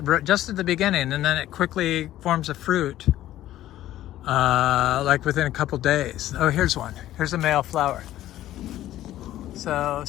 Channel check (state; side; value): quieter; right; 13.7 dB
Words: just at the beginning, and then it quickly forms a fruit like within a couple days. Oh, here's one. Here's a male flower. So